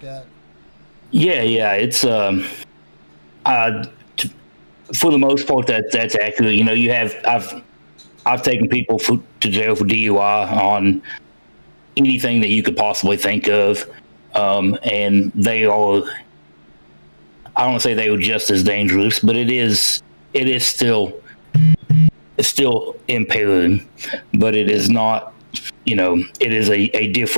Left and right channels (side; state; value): both; inverted; correlation -1.00